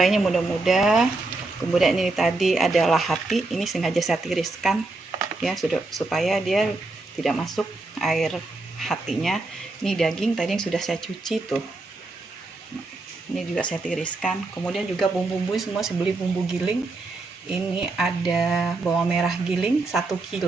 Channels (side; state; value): left; quieter; 3.2 dB